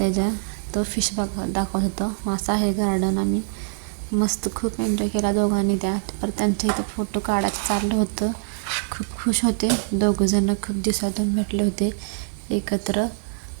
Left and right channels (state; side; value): silent; left; 61 dB below the other